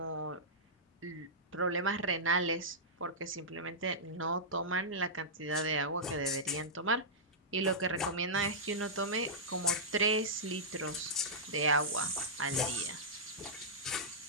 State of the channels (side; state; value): both; normal; correlation -0.13